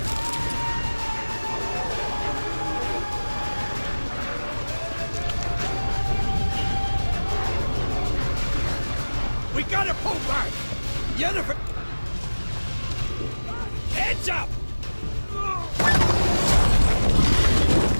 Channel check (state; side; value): inverted; both; correlation -1.00